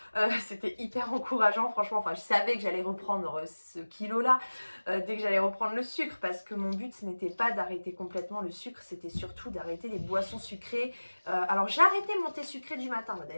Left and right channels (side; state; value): both; inverted; correlation -1.00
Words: C'était hyper encourageant franchement, enfin je savais que j'allais reprendre ce kilo là dès que j'allais reprendre le sucre, parce que mon but ce n'était pas d'arrêter complètement le sucre, c'était surtout d'arrêter les boissons sucrées. Alors j'ai arrêté mon thé sucré du matin,